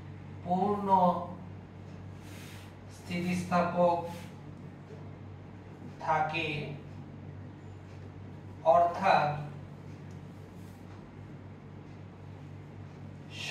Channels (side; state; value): both; identical; correlation 1.00